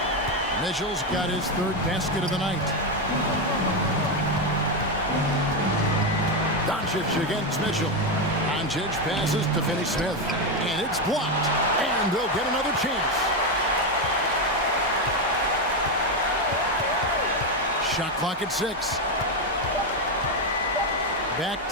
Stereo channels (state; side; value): normal; both; correlation 0.08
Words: Mitchell's got his 3rd basket of the night. Doncic against Mitchell. Doncic passes to Finney-Smith. And it's blocked. And they'll get another chance. Shot clock at 6. Back